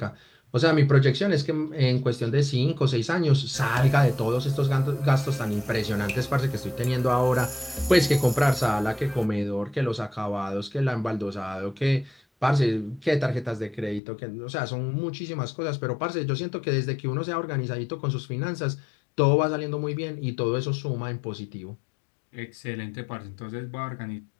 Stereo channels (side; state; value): right; drops out; at 14.0 s